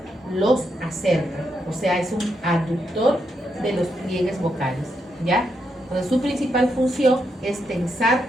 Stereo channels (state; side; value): normal; both; correlation 0.81